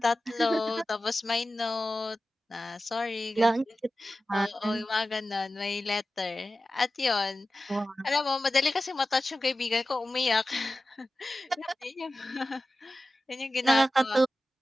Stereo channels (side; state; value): both; normal; correlation 0.94